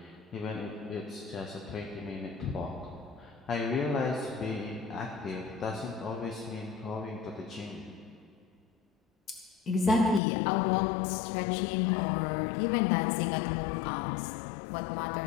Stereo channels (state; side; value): drops out; right; at 10.2 s